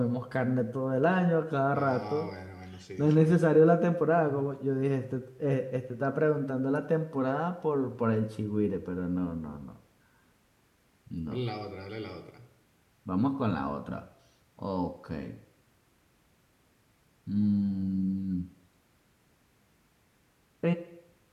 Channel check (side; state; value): both; identical; correlation 1.00